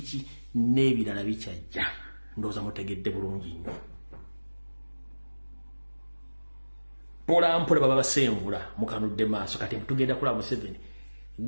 n'ebirala bikyajja. Ndowooza mutegedde bulungi nnyo. Mpola baba basenvula mukanudde maaso kati tugenda kulaba Museveni.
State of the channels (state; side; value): inverted; both; correlation -1.00